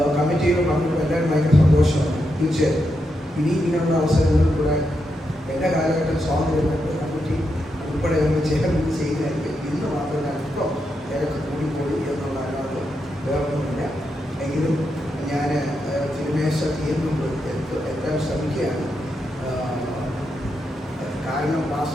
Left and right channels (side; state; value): both; normal; correlation 0.84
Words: കമ്മിറ്റിയിൽ പങ്കെടുക്കുന്ന എല്ലാവരും ഭയങ്കര സന്തോഷമാണ്. തീർച്ചയായും ഇനി ഇങ്ങനെയുള്ള അവസരങ്ങളിൽ കൂടെ എല്ലാ കാലഘട്ടം സ്വാതന്ത്ര്യമുണ്ട്. കമ്മിറ്റി ഉൾപ്പെടെ നമ്മൾ ചേർന്ന് ചെയ്യുന്നതായിരിക്കും. ഇന്ന് മാത്രമല്ല അല്പം തിരക്ക് കൂടിപ്പോയി എന്നുള്ള അല്ലാതെ വേറൊന്നുമില്ല. എങ്കിലും ഞാൻ തിരുമേശ തീർന്നുമ്പോൾ എത്താൻ ശ്രമിക്കുകയാണ്. കാരണം